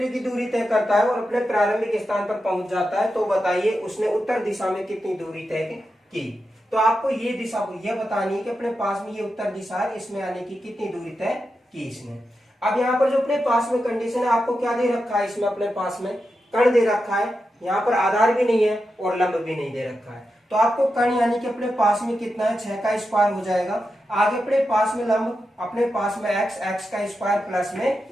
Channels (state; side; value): normal; both; correlation 0.89